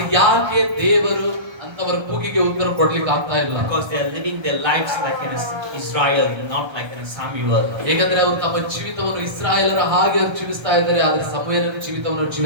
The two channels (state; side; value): late; left; 1.3 ms